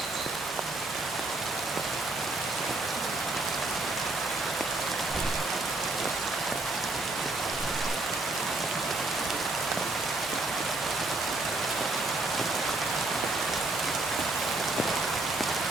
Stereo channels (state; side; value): quieter; left; 3.0 dB